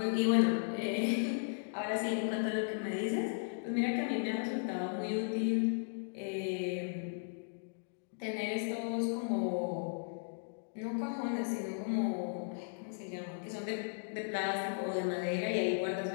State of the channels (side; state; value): right; silent; digital silence